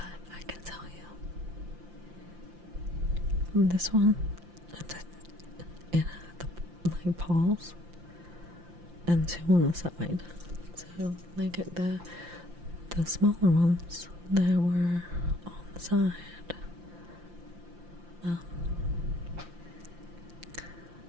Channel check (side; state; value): left; late; 5.8 ms